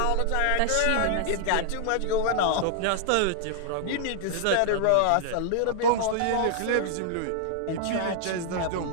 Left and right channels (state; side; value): different; both; correlation 0.00